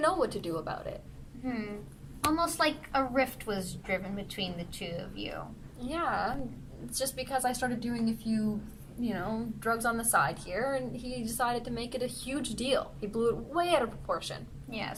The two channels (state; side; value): identical; both; correlation 1.00